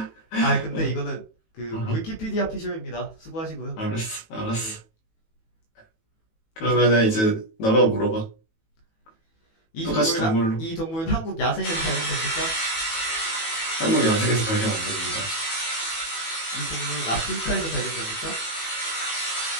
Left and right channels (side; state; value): right; late; 18 ms